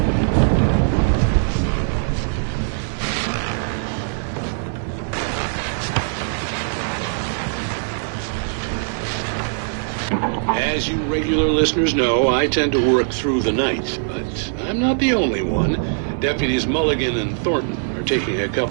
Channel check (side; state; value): left; silent; digital silence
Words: As you regular listeners know, I tend to work through the night, but I'm not the only one. Deputies Mulligan and Thornton are taking a